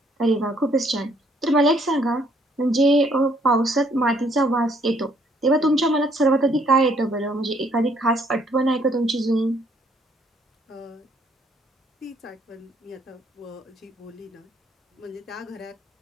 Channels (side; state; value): both; normal; correlation 0.66